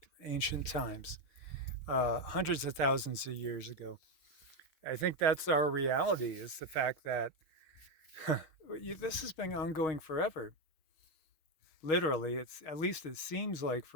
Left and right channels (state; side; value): late; right; 6.4 ms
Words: ancient times, hundreds of thousands of years ago. I think that's our reality is the fact that this has been ongoing forever. Literally, it's at least it seems like